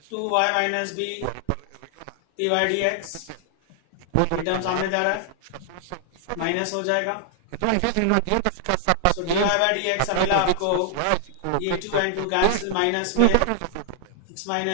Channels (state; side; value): different; both; correlation -0.01